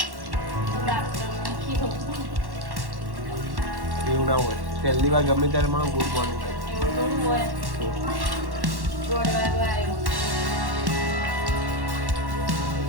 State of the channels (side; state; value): left; late; 1.1 ms